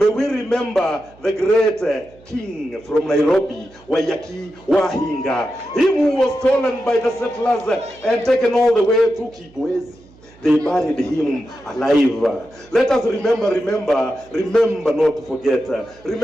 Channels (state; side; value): noise; right; hum, 26 dB below the sound